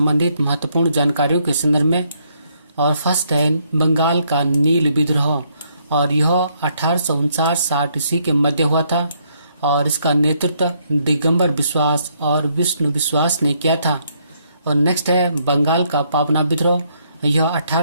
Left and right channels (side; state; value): both; inverted; correlation -0.72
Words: महत्वपूर्ण जानकारियों के संदर्भ में। और फर्स्ट है बंगाल का नील विद्रोह, और यह 1859-60 ईस्वी के मध्य हुआ था और इसका नेतृत्व दिगंबर विश्वास और विष्णु विश्वास ने किया था। और नेक्स्ट है बंगाल का पावना विद्रोह, यह